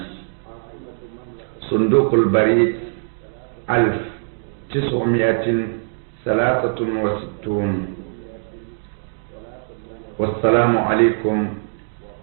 صندوق البريد 1963 والسلام عليكم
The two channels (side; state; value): left; silent; digital silence